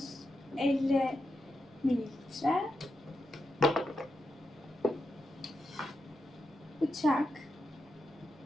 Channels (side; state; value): both; normal; correlation 0.87